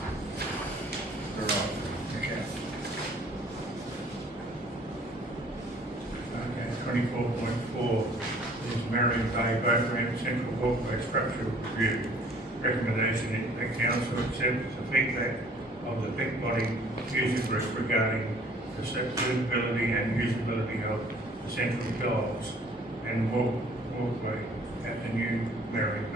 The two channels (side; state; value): both; normal; correlation 0.55